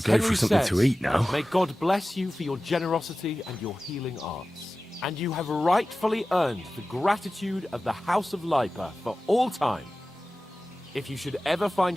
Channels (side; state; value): both; normal; correlation 0.96